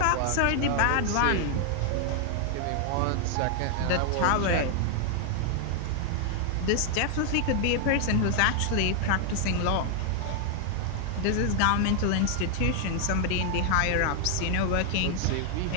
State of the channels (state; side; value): different; both; correlation 0.00